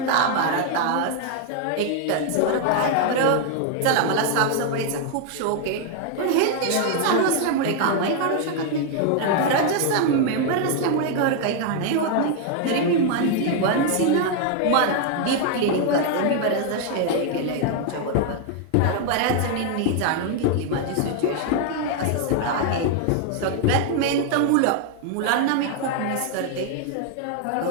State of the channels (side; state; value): both; different; correlation 0.00